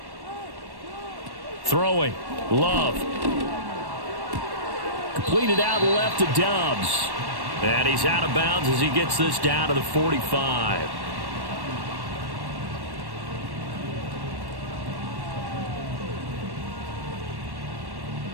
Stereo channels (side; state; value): left; late; 1.1 ms